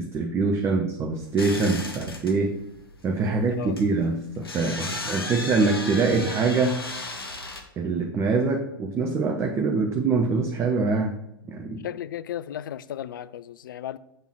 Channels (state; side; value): quieter; left; 3.1 dB